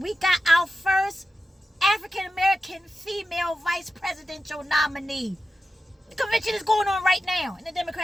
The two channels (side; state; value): both; normal; correlation 0.92